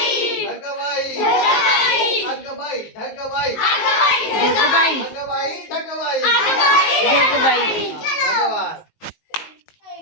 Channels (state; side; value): late; right; 19 ms